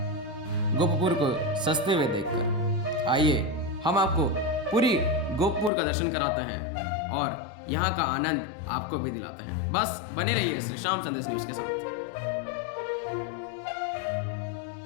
गोपपुर को सजते हुए देखकर। आइए हम आपको पूरी गोपपुर का दर्शन कराते हैं और यहाँ का आनंद आपको भी दिलाते हैं। बस बने रहिए श्री श्याम संदेश न्यूज के साथ।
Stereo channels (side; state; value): right; drops out; at 5.7 s